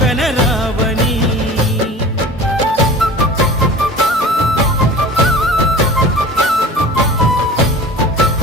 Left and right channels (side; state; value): both; normal; correlation 0.39